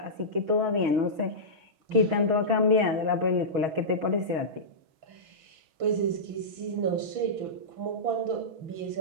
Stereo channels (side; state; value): left; late; 6.3 ms